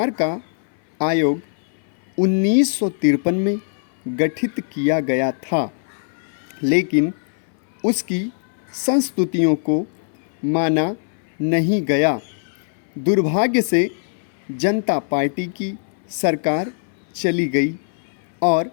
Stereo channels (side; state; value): right; silent; 60 dB below the other